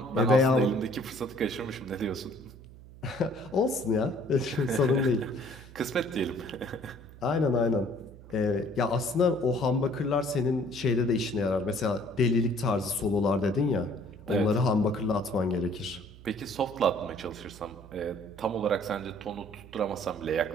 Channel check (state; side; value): noise; right; hum, 19 dB below the sound